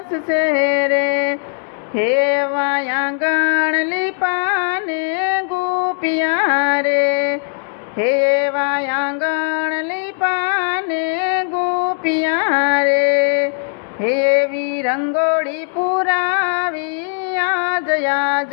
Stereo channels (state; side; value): silent; right; digital silence